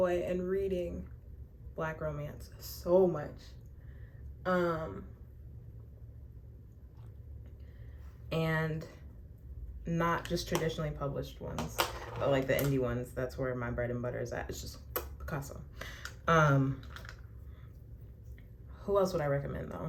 in reading Black romance. So much. And not just traditionally published ones, but like the indie ones. That's where my bread and butter is at. It's just Picasso. Who else would I recommend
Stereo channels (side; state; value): both; identical; correlation 1.00